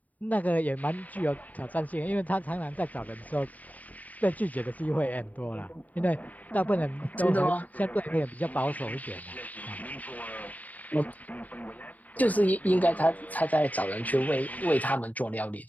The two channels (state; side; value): late; right; 0.075 ms